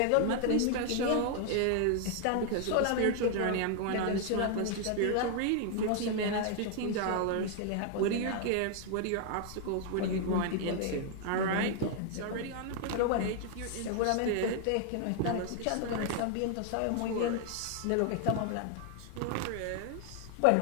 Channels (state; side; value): different; both; correlation 0.00